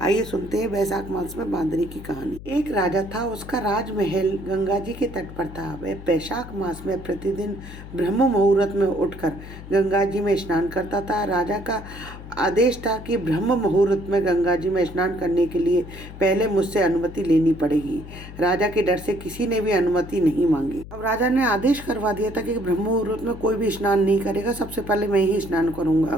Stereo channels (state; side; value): noise; left; hum, 14 dB below the sound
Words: आइए सुनते हैं बैसाख मास में बांदरी की कहानी। एक राजा था, उसका राजमहल गंगा जी के तट पर था। वह बैसाख मास में प्रतिदिन ब्रह्म मुहूर्त में उठकर गंगा जी में स्नान करता था। राजा का आदेश था कि ब्रह्म मुहूर्त में गंगा जी में स्नान करने के लिए पहले मुझसे अनुमति लेनी पड़ेगी। राजा के डर से किसी ने भी अनुमति नहीं मांगी। अब राजा ने आदेश करवा दिया था कि ब्रह्म मुहूर्त में कोई भी स्नान नहीं करेगा, सबसे पहले मैं ही स्नान करूंगा।